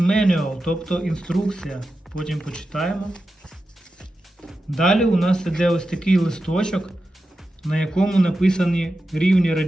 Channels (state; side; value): normal; both; correlation 0.91